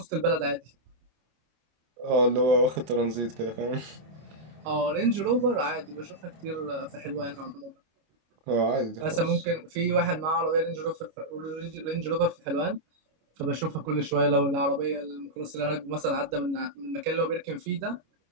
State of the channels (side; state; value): left; late; 25 ms